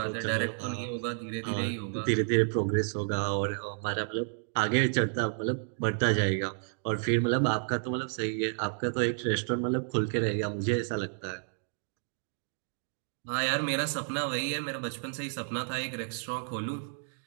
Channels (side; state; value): left; silent; digital silence